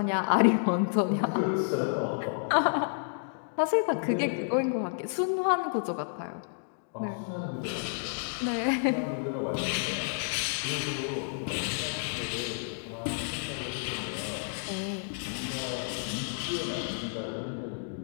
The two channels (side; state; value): right; silent; digital silence